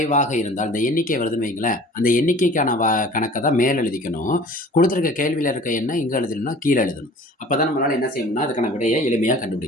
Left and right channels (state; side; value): normal; both; correlation 0.46